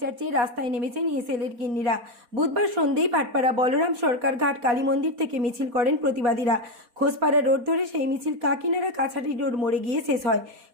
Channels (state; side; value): late; left; 4.2 ms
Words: চেয়ে রাস্তায় নেমেছেন এসএলএর গিন্নিরা। বুধবার সন্ধ্যেই ভাটপাড়া বলরাম সরকার ঘাট কালী মন্দির থেকে মিছিল করেন প্রতিবাদীরা। খোসপাড়া রোড ধরে সেই মিছিল কাকিনাড়া কাছারি রোড মোড়ে গিয়ে শেষ হয়।